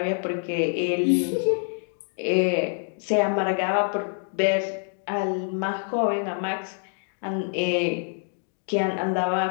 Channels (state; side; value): silent; right; 55 dB below the other